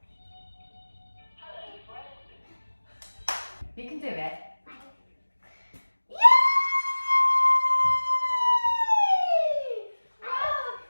You can do it. Yay! Wow!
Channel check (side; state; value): both; inverted; correlation -1.00